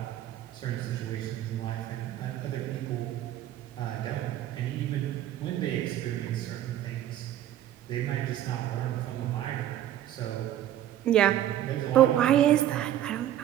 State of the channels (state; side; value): quieter; left; 12.3 dB